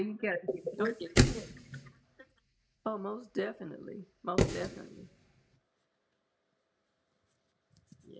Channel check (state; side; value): identical; both; correlation 1.00